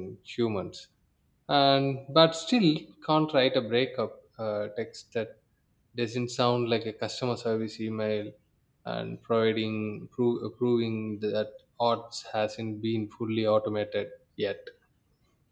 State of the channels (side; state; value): both; identical; correlation 1.00